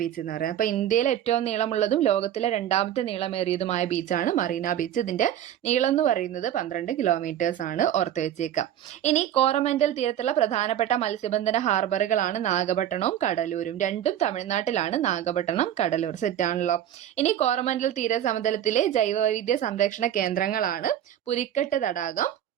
എന്ന് പറയുന്നത്. അപ്പോൾ ഇന്ത്യയിലെ ഏറ്റവും നീളമുള്ളതും ലോകത്തിലെ രണ്ടാമത്തെ നീളമേറിയതുമായ ബീച്ചാണ് മറീന ബീച്ച്. ഇതിന്റെ നീളം എന്ന് പറയുന്നത് 12 കിലോമീറ്റേഴ്സ് ആണ്, ഓർത്ത് വെച്ചേക്കാം. ഇനി കോറമൻഡൽ തീരത്തുള്ള പ്രധാനപ്പെട്ട മത്സ്യബന്ധന ഹാർബറുകളാണ് നാഗപട്ടണവും കടലൂരും. രണ്ടും തമിഴ്നാട്ടിലാണ്, നാഗപട്ടണം, കടലൂർ. സെറ്റാണല്ലോ. ഇനി കോറമൻഡൽ തീരസമതലത്തിലെ ജൈവവൈവിധ്യ സംരക്ഷണ കേന്ദ്രങ്ങളാണ് പുലിക്കെട്ട് തടാകം,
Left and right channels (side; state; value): left; quieter; 11.0 dB